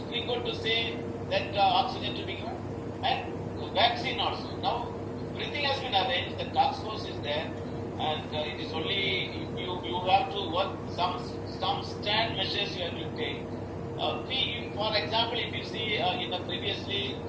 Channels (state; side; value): identical; both; correlation 1.00